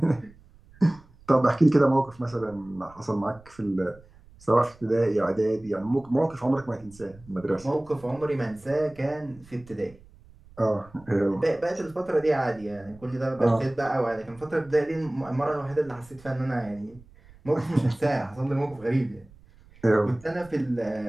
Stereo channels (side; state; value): right; noise; rumble, 25 dB below the sound